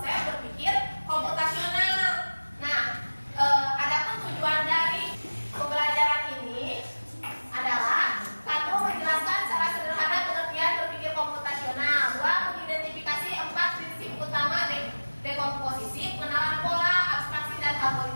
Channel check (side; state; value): both; inverted; correlation -1.00